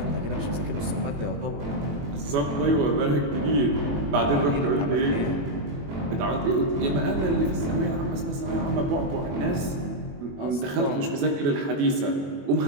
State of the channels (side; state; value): left; late; 21 ms